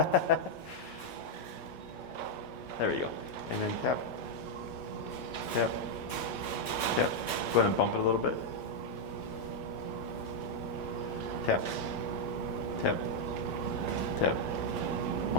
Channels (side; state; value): both; normal; correlation -0.02